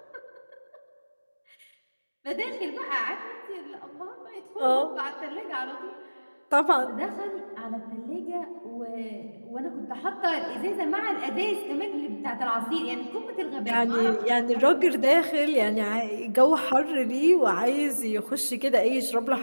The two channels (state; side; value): inverted; both; correlation -1.00